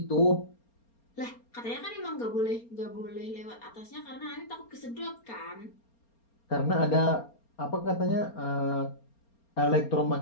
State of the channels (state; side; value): late; right; 4.3 ms